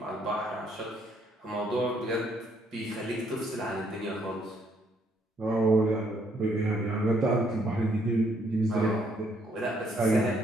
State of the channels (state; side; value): normal; both; correlation 0.70